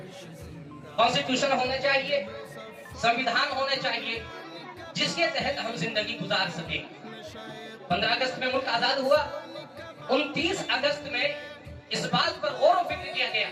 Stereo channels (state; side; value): identical; both; correlation 1.00